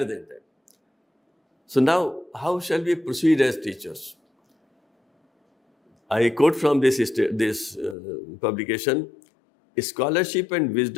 than that. So now, how shall we proceed as teachers? I quote from this publication, scholarship and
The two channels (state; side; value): drops out; right; at 8.0 s